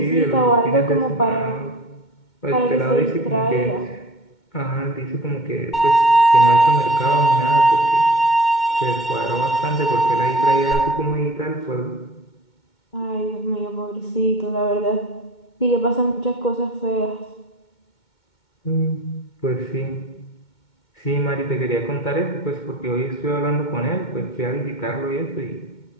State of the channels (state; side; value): late; right; 2.2 ms